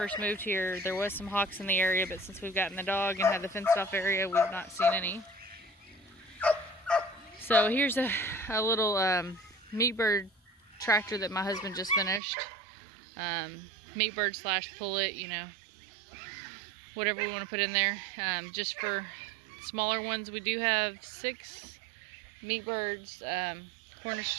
moved here, there was some hawks in the area, but since we've gotten the dog and had the fenced off area, we've not seen any. So here's a little meat bird tractor that my husband just finished. Meat bird / pullet, you know, whatever we want to put in there. Just for smaller ones, we do have 6 meat birds,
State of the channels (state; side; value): drops out; left; at 12.2 s